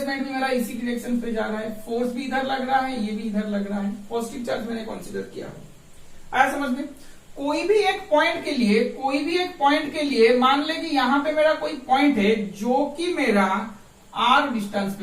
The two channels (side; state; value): both; identical; correlation 1.00